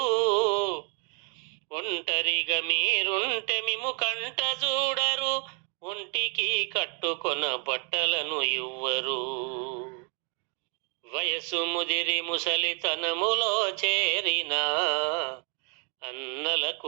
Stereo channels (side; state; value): left; quieter; 34.9 dB